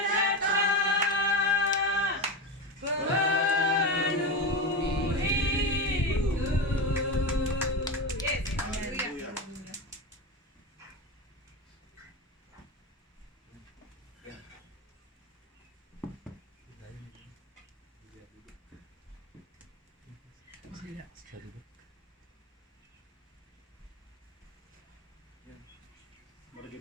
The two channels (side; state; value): both; normal; correlation 0.20